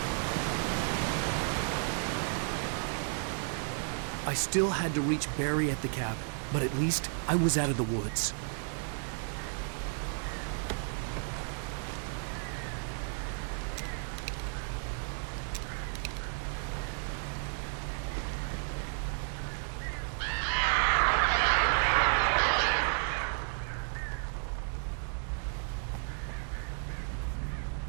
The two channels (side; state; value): left; silent; 56 dB below the other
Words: I still had to reach Barry at the cabin, but at least I was out of the woods.